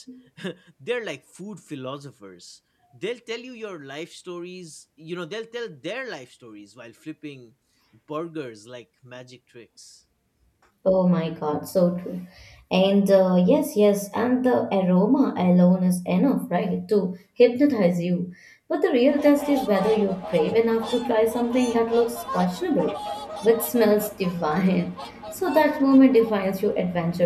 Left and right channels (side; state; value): both; identical; correlation 1.00